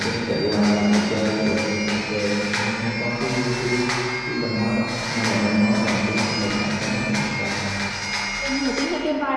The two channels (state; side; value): identical; both; correlation 1.00